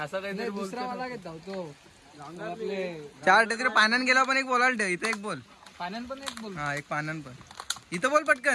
काहीतरी दुसरा मला घेत तो आपले 4 तिकडे पाण्यान गेला पण एक बोलायला ठेव. इथे एक बोल. पाण्यान पण एक बोल. हा एक पाण्यान पण. इथं बोल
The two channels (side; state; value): both; identical; correlation 1.00